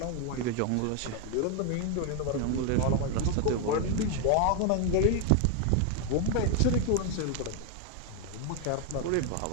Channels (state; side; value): different; both; correlation 0.01